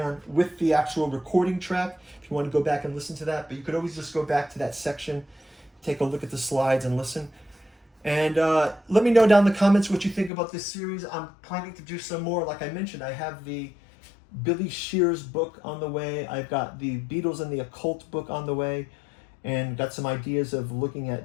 with the actual recording track, if you want to go back and listen to that. But you could always just go back to that section, take a look at the slides and listen. And let me know down in the comments what you think about this series. I'm planning to do some more. Like I mentioned, I have the Billy Shear's book on the way. I've got the Beatles and the Occult book on the way, and got some ideas of looking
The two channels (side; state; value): right; drops out; at 10.3 s